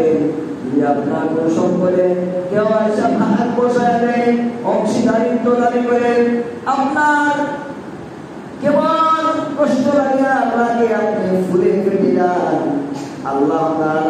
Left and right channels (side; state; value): both; identical; correlation 1.00